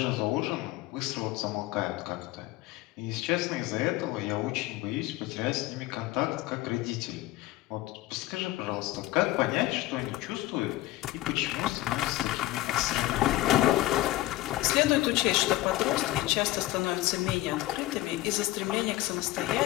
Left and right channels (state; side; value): quieter; right; 16.9 dB